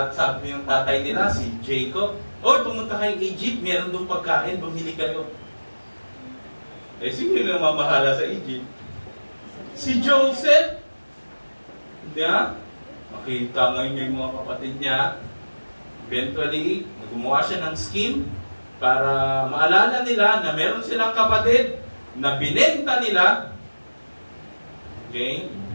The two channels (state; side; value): inverted; both; correlation -1.00